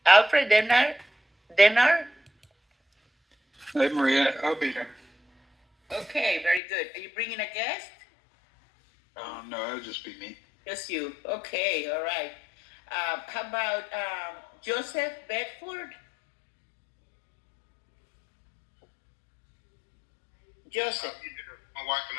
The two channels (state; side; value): drops out; right; at 6.6 s